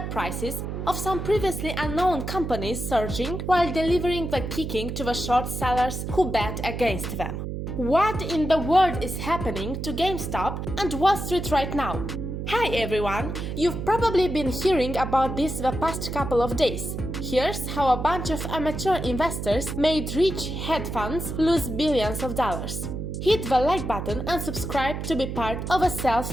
prices of some previously unknown companies surging while delivering the kicking to the short sellers who bet against them. What in the world is happening to GameStop and Wall Street right now? Hi everyone! You've probably been hearing about this the past couple of days. Here's how a bunch of amateur investors made rich hedge funds lose billions of dollars. Hit the like button and subscribe to be part of a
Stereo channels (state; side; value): noise; right; hum, 5 dB below the sound